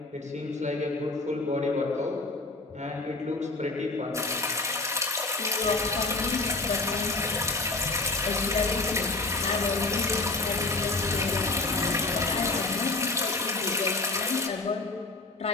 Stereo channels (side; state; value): right; quieter; 3.3 dB